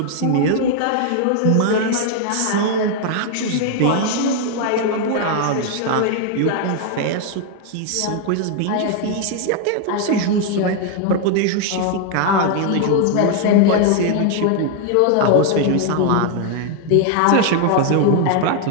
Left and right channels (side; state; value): both; different; correlation 0.00